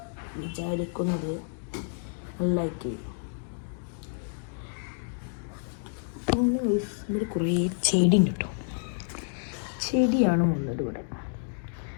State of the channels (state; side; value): silent; right; digital silence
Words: വിചാരിക്കുന്നത്. ലൈക്ക് ചെയ്യും. പിന്നെ ഇവിടെ കുറേ ചെടി ഉണ്ട് കേട്ടോ. ചെടിയാണ് ഉള്ളത് ഇവിടെ.